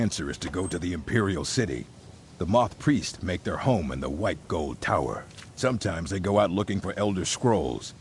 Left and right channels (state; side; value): identical; both; correlation 1.00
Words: is to go to the Imperial City. The moth priests make their home in the White Gold Tower. Sometimes they go out looking for Elder Scrolls.